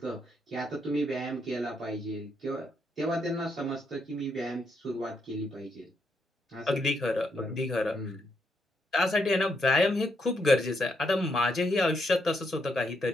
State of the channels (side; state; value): both; normal; correlation 0.77